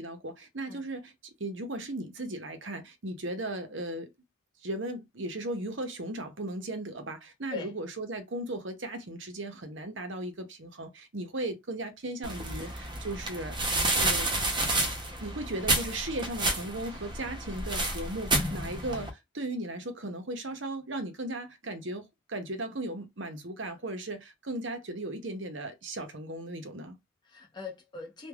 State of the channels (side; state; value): both; normal; correlation 0.14